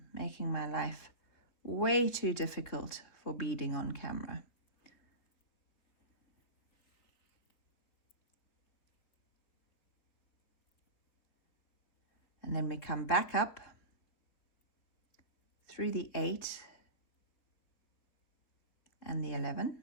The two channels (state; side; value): late; right; 4.1 ms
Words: making my life way too difficult for beading on camera. And then we come back up through the 8 and the 11.